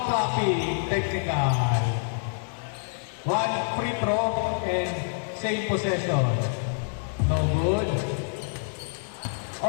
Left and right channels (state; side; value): silent; right; digital silence